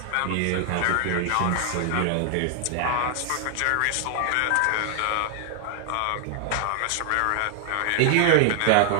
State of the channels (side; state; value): both; different; correlation 0.00